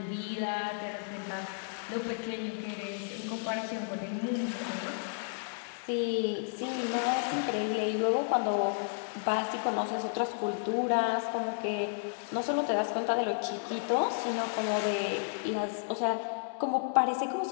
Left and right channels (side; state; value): right; silent; digital silence